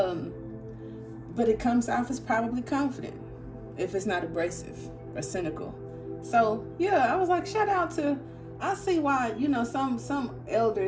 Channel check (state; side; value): identical; both; correlation 1.00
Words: it comes off as probably confident if it's not abrasive or cynical. So yeah, I was like, shout out to, I see why, some